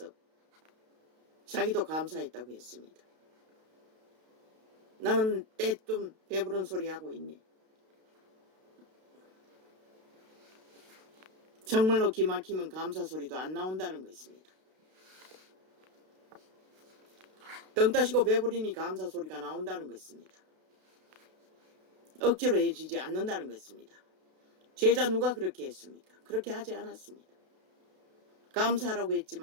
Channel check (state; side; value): late; left; 32 ms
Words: 자기도 감사했다고 했습니다. 나는 때뚱 배부른 소리 하고 있네. 정말로 기막히면 감사 소리도 안 나온다는 것입니다. 덩 따시고 배부리니 감사 소리가 나온다는 것입니다. 억지로 해주지 않는다는 것입니다. 제자 누가 그렇게 했습니까? 그렇게 하지 않았습니다. 감사하라고